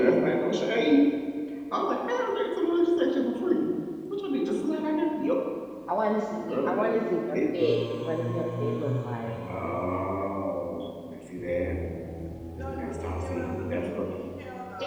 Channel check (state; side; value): identical; both; correlation 1.00